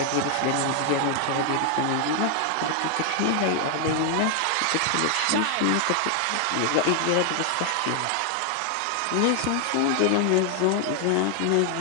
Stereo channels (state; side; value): different; both; correlation 0.00